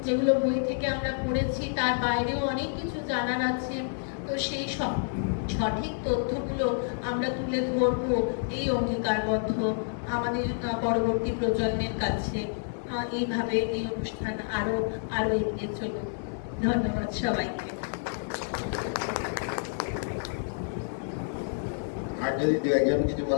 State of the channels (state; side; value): silent; right; digital silence